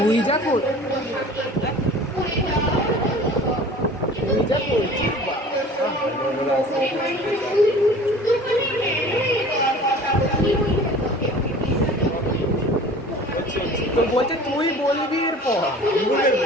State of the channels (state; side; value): normal; both; correlation 0.44